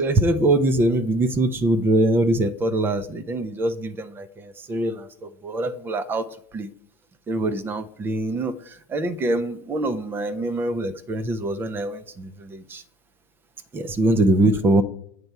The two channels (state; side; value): normal; both; correlation 0.59